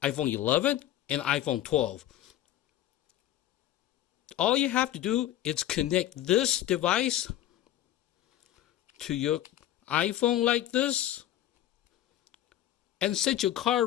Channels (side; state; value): right; quieter; 12.8 dB